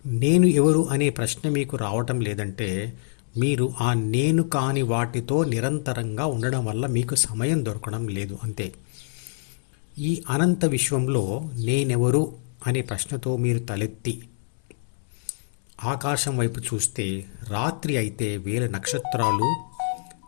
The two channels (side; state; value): right; silent; 62 dB below the other